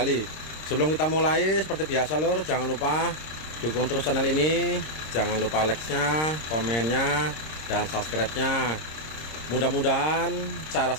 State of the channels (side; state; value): right; late; 26 ms